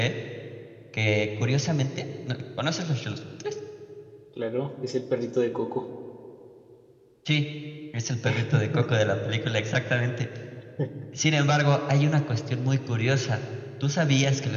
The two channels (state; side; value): identical; both; correlation 1.00